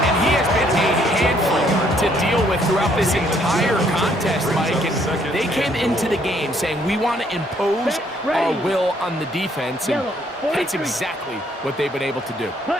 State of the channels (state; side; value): normal; both; correlation 0.67